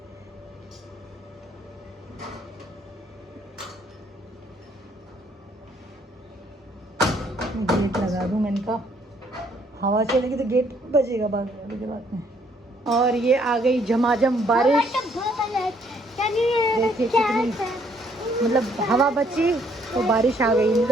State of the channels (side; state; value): both; normal; correlation 0.66